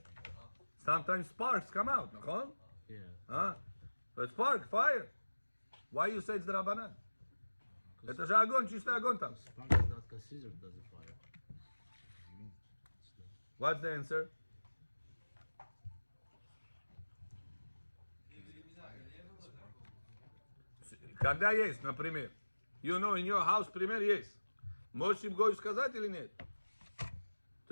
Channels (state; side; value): inverted; both; correlation -1.00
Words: Sometimes sparks come out, nachon? Yeah. Huh? So it's spark, fire. Why you say it's the Rabbanan? Это же огонь, чистый огонь там. Spark is not considered as a fire. What's the answer? Когда есть, например. You know, in your house, пример есть. Можешь им гою сказать или нет?